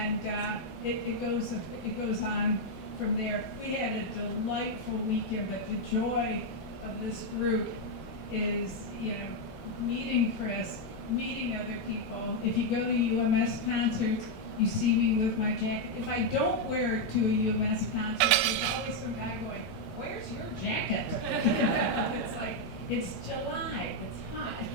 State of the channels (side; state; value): right; late; 4.6 ms